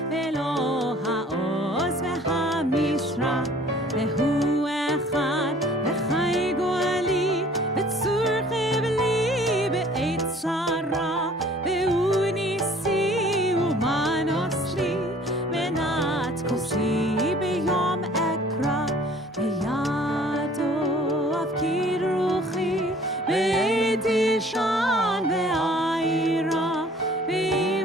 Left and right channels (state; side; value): normal; both; correlation 0.53